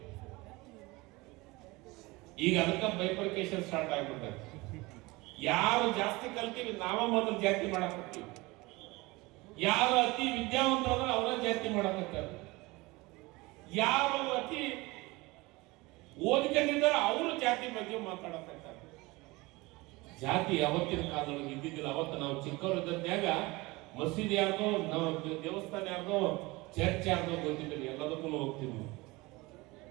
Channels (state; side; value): quieter; left; 22.7 dB